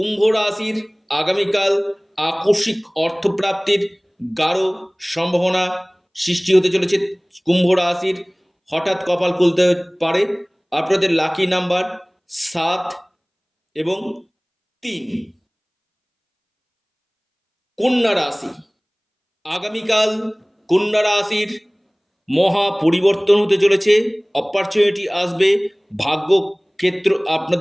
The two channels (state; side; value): identical; both; correlation 1.00